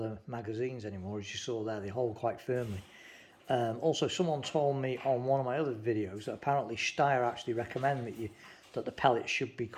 magazines anymore. As you saw there, they hold quite firmly. Also, someone told me on one of my other videos that apparently Steyr actually recommend that that the pellet should be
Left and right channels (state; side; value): identical; both; correlation 1.00